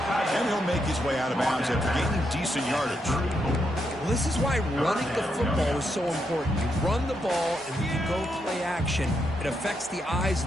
And he'll make his way out of bounds after gaining decent yardage. Well, this is why running the football is so important. You run the ball and you go play action. It affects the eyes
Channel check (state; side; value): normal; both; correlation 0.81